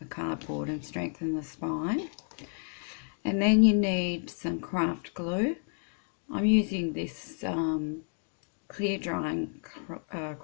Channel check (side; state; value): right; silent; 57 dB below the other